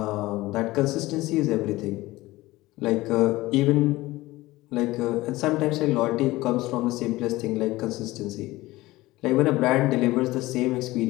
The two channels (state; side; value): quieter; right; 18.8 dB